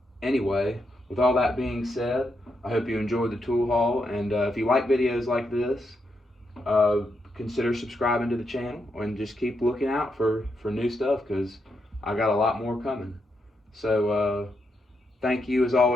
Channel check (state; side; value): normal; both; correlation 0.82